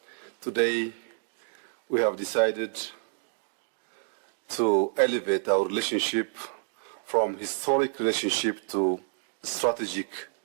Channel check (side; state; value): left; silent; digital silence